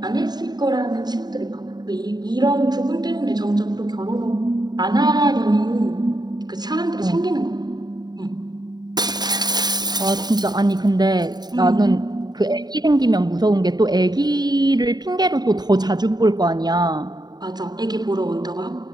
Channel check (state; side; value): late; left; 0.20 ms